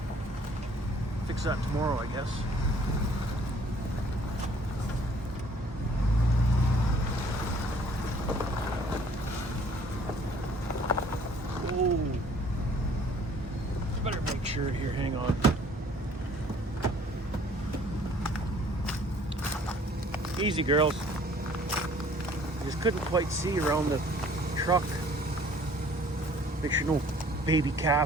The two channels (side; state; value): both; normal; correlation 0.56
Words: Fix that tomorrow, I guess. Oh, better make sure here. Hang on. Easy, girls. I just couldn't quite see around the truck. Make sure no baby